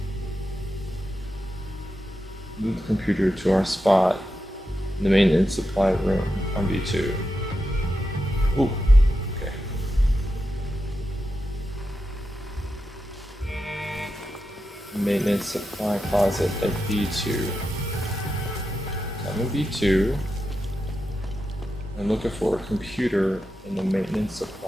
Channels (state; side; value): normal; both; correlation 0.89